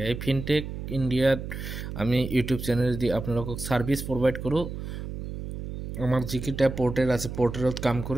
এই ফিনটেক ইণ্ডিয়াত আমি ইউটিউব চেনেল দি আপোনালোকক ছাৰ্ভিচ প্ৰভাইড কৰোঁ। আমাৰ যিকেইটা পৰ্টেল আছে পৰ্টেলত কাম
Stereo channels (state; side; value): noise; right; hum, 7 dB below the sound